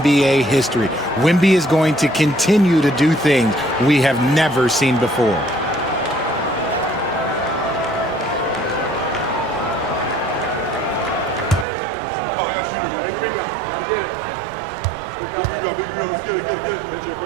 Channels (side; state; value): left; drops out; at 11.7 s